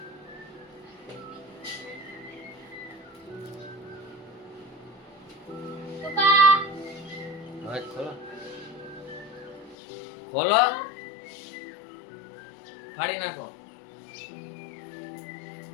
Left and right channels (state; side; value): drops out; right; at 9.8 s